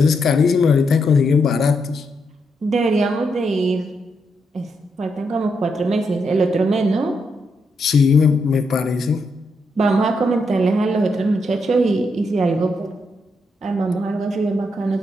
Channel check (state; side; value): normal; both; correlation 0.80